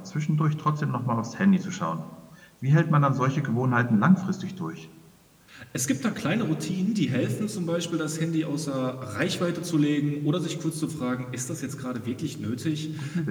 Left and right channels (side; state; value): both; identical; correlation 1.00